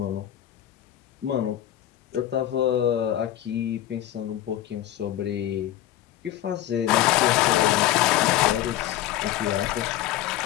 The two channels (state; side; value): quieter; right; 12.9 dB